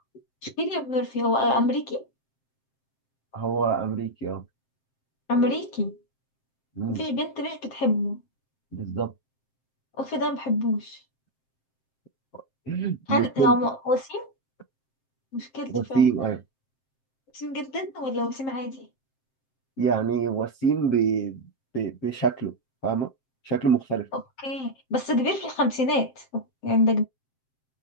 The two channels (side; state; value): right; late; 7.6 ms